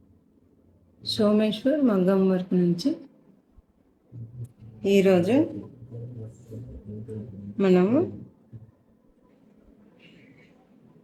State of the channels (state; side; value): identical; both; correlation 1.00